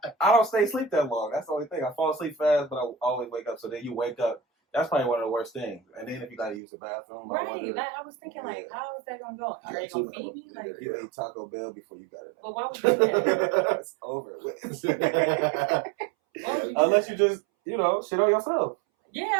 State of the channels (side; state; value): left; drops out; at 6.6 s